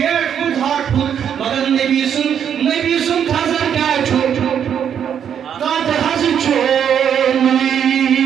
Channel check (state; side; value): quieter; left; 8.5 dB